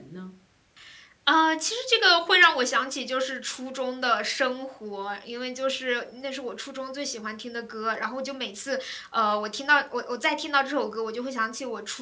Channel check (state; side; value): identical; both; correlation 1.00